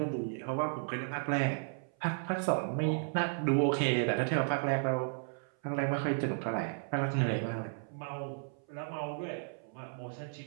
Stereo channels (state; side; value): silent; left; 55 dB below the other